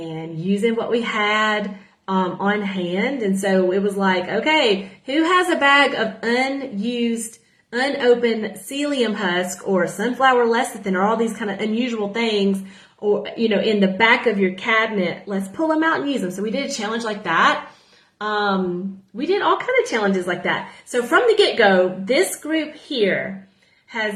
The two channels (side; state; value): both; identical; correlation 1.00